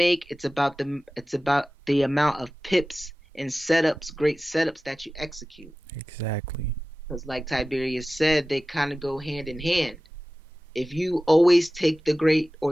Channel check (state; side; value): normal; both; correlation 0.96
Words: It's about the amount of pips and setups, great setups that you execute. Exactly. Because like Tiberius said, they kind of go hand in hand. If you always take the great or